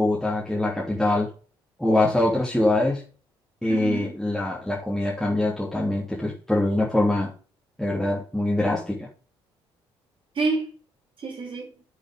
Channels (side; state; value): both; normal; correlation 0.88